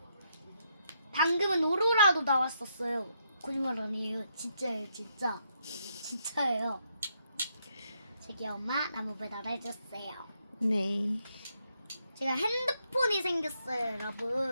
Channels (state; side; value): inverted; both; correlation -0.77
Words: 방금은 오로라도 나왔었어요. 거짓말 아니에요. 진짜예요. 진짜예요. 저기 엄마 나무 배달해줬어요. 네. 제가 핸드폰이 생겼어요,